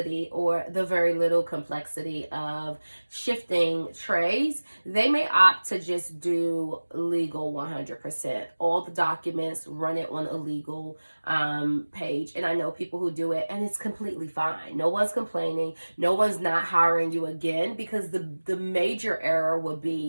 or the very little complexity of shifting trays, they may opt to just do legal 100%. All the documents, run it on a legal page. And I know people who do it, and it's completely fine. No one's complaining. No one's not hiring you again, because the major error would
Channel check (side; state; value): both; inverted; correlation -1.00